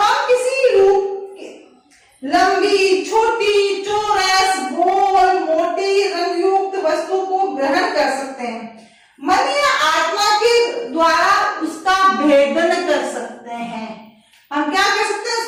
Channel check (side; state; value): both; identical; correlation 1.00